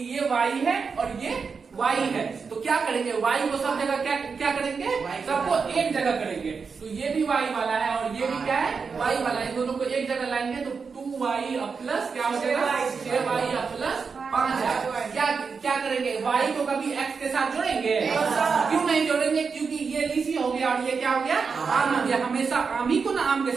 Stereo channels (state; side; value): quieter; left; 5.3 dB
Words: ये y है और ये y है, तो क्या करेंगे, y को सब जगह क्या करेंगे, सबको एक जगह करेंगे। तो ये भी y वाला है और ये भी क्या है, y वाला है। दोनों को एक जगह लाएंगे तो 2y प्लस क्या हो जाएगा, 6y प्लस 5 है। क्या करेंगे, y को कभी x के साथ जोड़ेंगे, क्यों नहीं जोड़ेंगे, क्योंकि ये लीची हो गया और ये क्या हो गया, आम हो गया। हमेशा आम ही को ना आम के